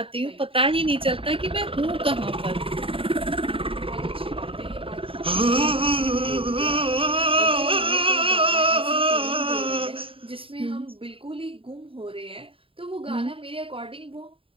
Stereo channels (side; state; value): left; late; 0.26 ms